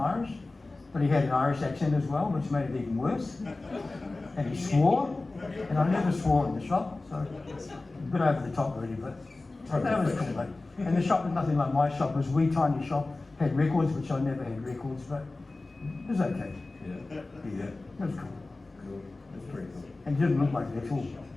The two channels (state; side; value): quieter; right; 3.2 dB